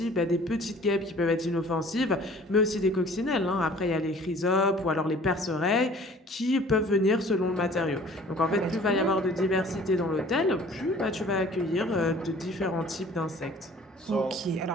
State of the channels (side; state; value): both; normal; correlation 0.50